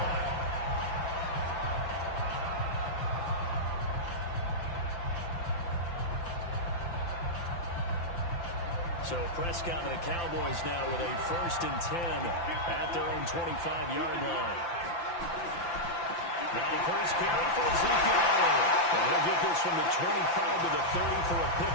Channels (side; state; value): right; late; 5.9 ms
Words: So Prescott and the Cowboys now with a 1st and 10 at their own 25-yard line. Now the first carry for Ezekiel Elliott. And he'll get this from the 25 to the 30 for a